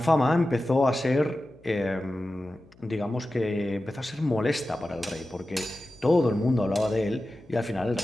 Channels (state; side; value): noise; left; hum, 27 dB below the sound